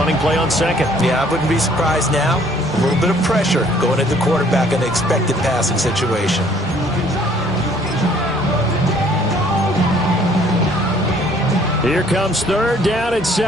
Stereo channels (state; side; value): normal; both; correlation 0.59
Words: play on 2nd. Yeah, I wouldn't be surprised now. A little bit of pressure going at the quarterback in an expected passing situation. Here comes 3rd down and